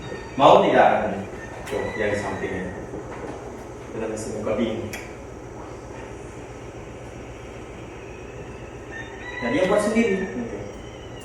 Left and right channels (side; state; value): both; identical; correlation 1.00